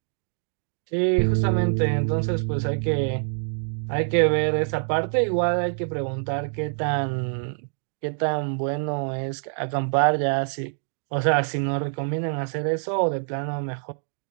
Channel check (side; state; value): left; silent; digital silence